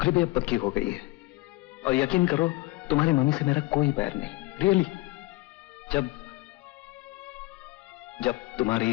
भी अब पक्की हो गई है। और यकीन करो, तुम्हारी मम्मी से मेरा कोई बैर नहीं, रियली।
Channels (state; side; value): quieter; right; 21.1 dB